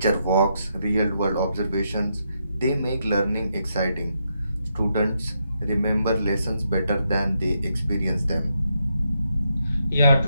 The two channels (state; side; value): inverted; both; correlation -0.80